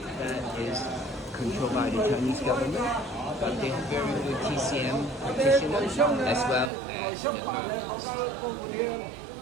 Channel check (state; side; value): drops out; left; at 6.7 s